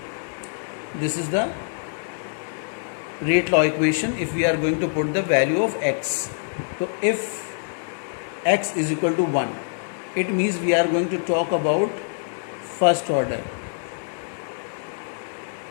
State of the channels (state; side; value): silent; right; digital silence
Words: This is the rate law equation if we are going to put the value of x. So if x is equal to 1, it means we are going to talk about first order